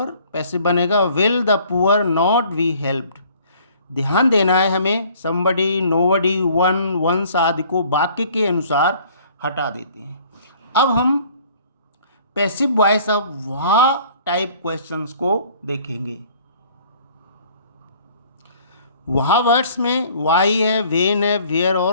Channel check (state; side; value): inverted; both; correlation -0.55